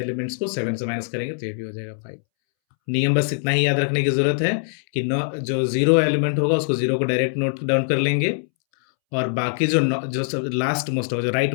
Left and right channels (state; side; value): silent; right; 64 dB below the other